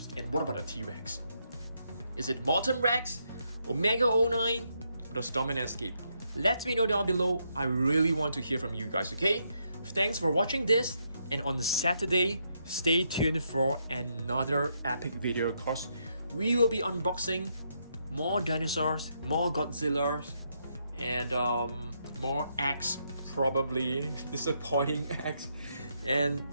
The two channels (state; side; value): inverted; both; correlation -0.78